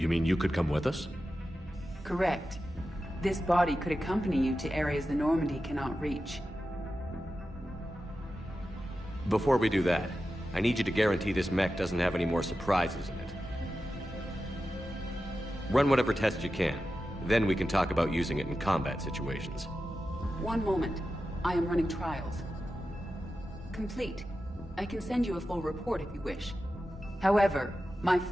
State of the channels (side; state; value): both; normal; correlation 0.92